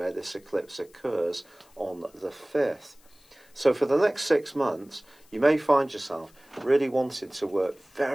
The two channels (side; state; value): left; noise; hiss, 29 dB below the sound